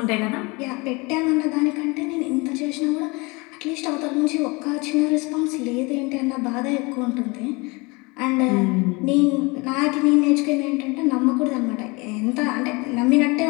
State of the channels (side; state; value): right; quieter; 26.5 dB